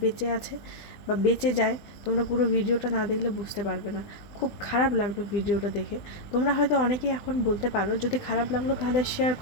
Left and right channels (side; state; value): right; late; 20 ms